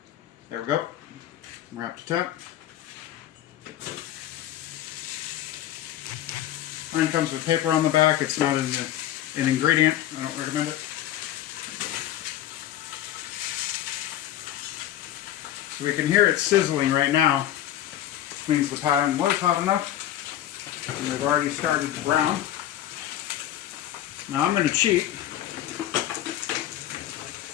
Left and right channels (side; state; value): right; quieter; 12.5 dB